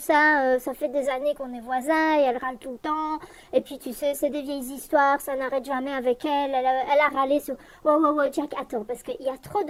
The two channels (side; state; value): both; identical; correlation 1.00